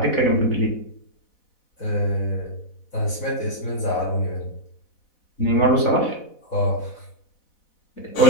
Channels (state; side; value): late; right; 4.1 ms